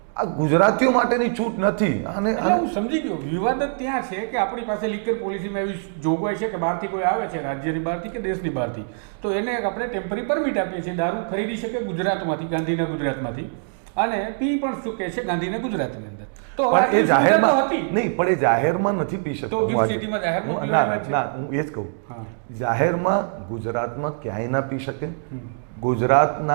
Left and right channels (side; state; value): left; silent; digital silence